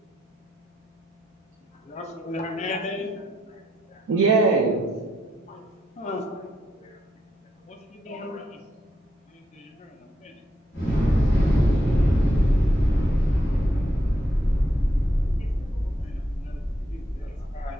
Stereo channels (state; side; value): normal; both; correlation 0.79